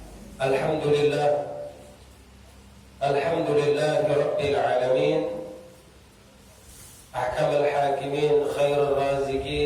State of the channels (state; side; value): identical; both; correlation 1.00